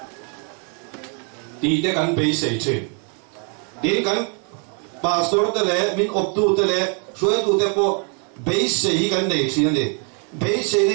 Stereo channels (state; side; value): quieter; left; 39.4 dB